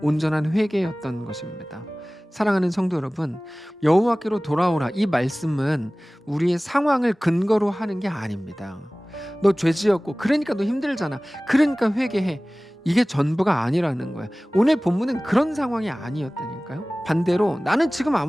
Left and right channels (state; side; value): normal; both; correlation 0.98